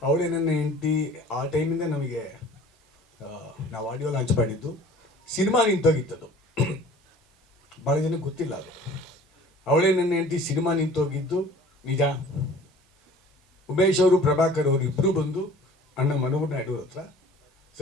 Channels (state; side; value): normal; both; correlation 0.48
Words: ಅವಳೇ ನನ್ನ ಹೆಂಡತಿ. ಆ ಟೈಮಿಂದ ನಮಗೆ ನಾವು ಆಡಿಯೋ ಲಾಂಚ್ ಮಾಡಿದ್ದು. ಸಿನಿಮಾ ನಿಂತೋಗಿತ್ತದು, ಭಾಳ ಜನಕ್ಕೆ ಗೊತ್ತಿಲ್ಲ ಅದು. ಅವಳೇ ನನ್ನ ಹೆಂಡತಿ ಸಿನಿಮಾ ನಿಂತೋಗಿದ್ದು ನಿಜ. ಉಮೇಶ್ ಅವರು, ಪ್ರಭಾಕರ್ ಅವರು ಇಬ್ಬರು ಬಂದು ಅಣ್ಣ ಮನೋಹರ್ ನಾಯ್ಡು ಹತ್ರ,